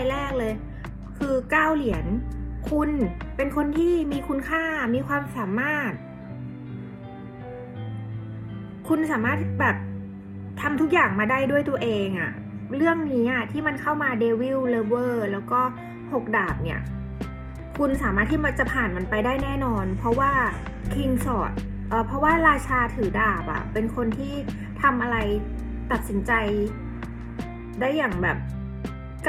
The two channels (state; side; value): identical; both; correlation 1.00